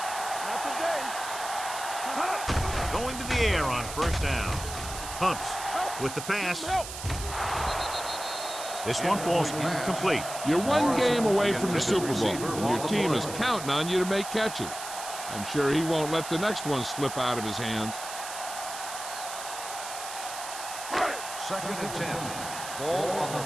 Going to the air on first down. Humps with the pass. This one falls incomplete. You're one game away from the Super Bowl, and your team is counting on you to make catches. I'm sure he won't let the next one slip out of his hands. Second and 10. Ball on the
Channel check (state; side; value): noise; right; hiss, 9 dB below the sound